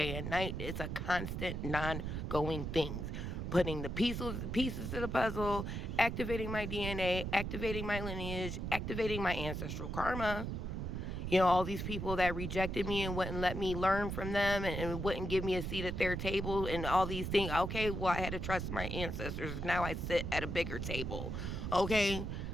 and night. It's a constant, non-going thing. Putting the pieces to the puzzle, activating my DNA, activating my lineage, activating my ancestral karma. All these people that rejected me and wouldn't let me learn from them, and wouldn't give me a seat at their table, and all these things. Okay, well, I had to trust my ancestors. Now I sit at a bigger table. Okay,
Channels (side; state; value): right; noise; rumble, 4 dB below the sound